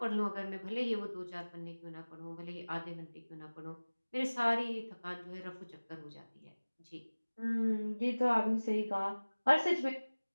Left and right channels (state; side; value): inverted; both; correlation -1.00